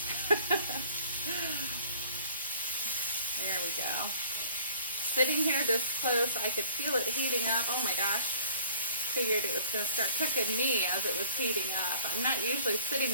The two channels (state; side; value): inverted; both; correlation -0.51